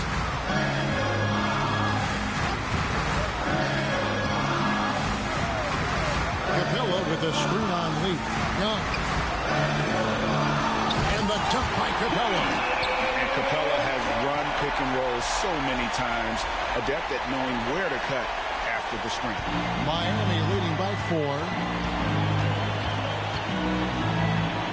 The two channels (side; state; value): both; identical; correlation 1.00